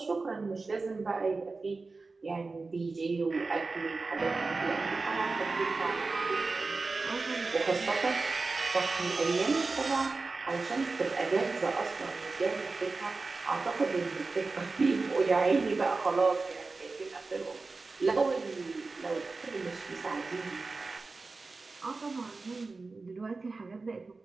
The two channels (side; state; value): left; quieter; 3.8 dB